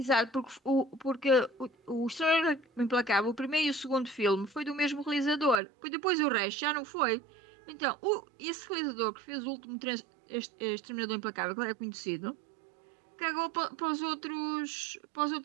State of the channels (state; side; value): drops out; left; at 5.6 s